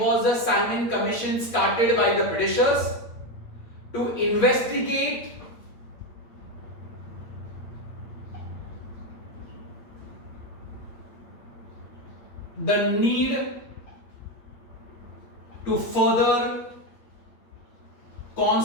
the Simon Commission started by the Britishers? To investigate the need to further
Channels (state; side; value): late; right; 8.6 ms